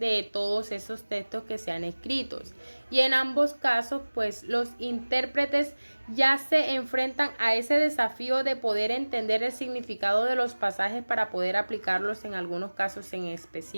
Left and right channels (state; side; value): inverted; both; correlation -1.00